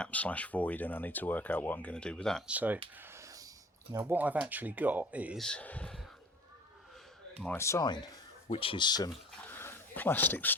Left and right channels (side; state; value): both; normal; correlation 0.45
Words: / void, and I need to work out what I'm going to do with that. So now what I've actually got is my sign, which is some plastic